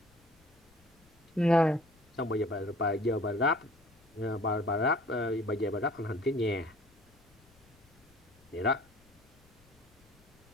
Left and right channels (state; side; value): noise; left; rumble, 29 dB below the sound